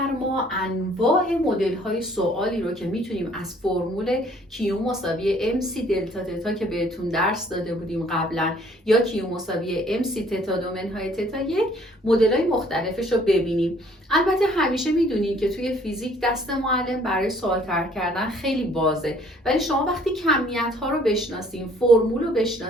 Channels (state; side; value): normal; both; correlation 0.59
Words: انواع مدل های سوالی رو که میتونیم از فرمول کیو مساوی ام سی دلتا تتا که بهتون درس داده بودیم قبلا یا کیو مساوی ام سی تتا دو منهای تتا یک مدل های مختلفش رو ببینیم. البته همیشه میدونین که توی فیزیک دست معلم برای سوال طرح کردن خیلی بازه، ولی شما وقتی کمیت ها رو بشناسین، فرمول رو